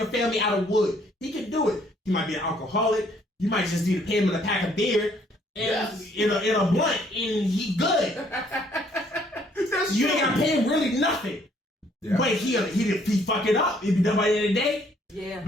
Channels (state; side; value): normal; both; correlation 0.64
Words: family out of wood. He can do it. He might be an alcoholic. You might just need to pay him in a pack of beer and in a blunt, and he good. You ain't got to pay him really nothing. Yeah. But he fuck it up. It'd be done by the end of the day. Yeah.